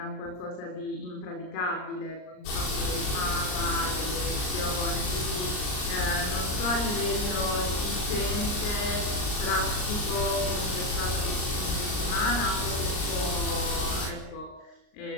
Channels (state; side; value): late; right; 39 ms